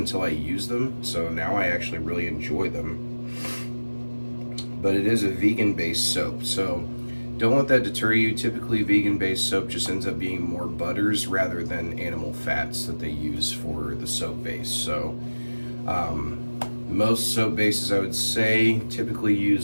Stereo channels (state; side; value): inverted; both; correlation -1.00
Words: I used them, so now I actually really enjoy them. But it is a vegan-based soap, so don't let that deter you. Typically, vegan-based soap just ends up being more butters rather than animal fats that they use for the soap base. So most soap bases, I would say, typically